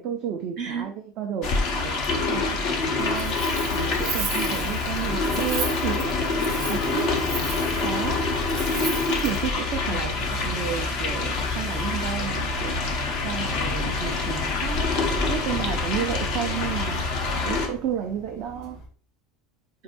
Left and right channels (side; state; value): both; normal; correlation 0.34